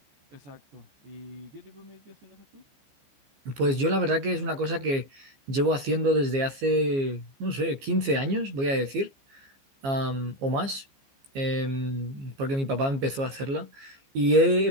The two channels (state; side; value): late; left; 15 ms